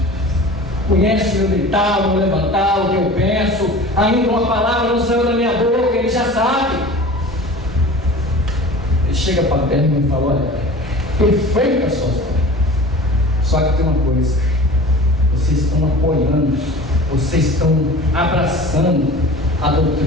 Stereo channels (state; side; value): normal; both; correlation 0.39